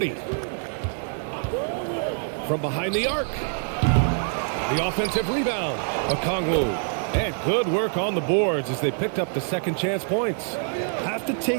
From behind the arc. The offensive rebound. Okongwu. And good work on the boards as they picked up the second chance points. Have to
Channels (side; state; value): left; silent; 62 dB below the other